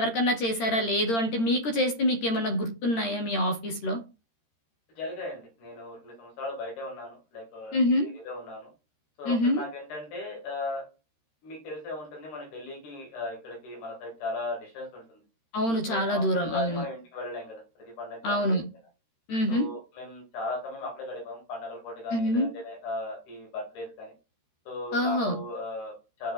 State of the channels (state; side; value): late; right; 13 ms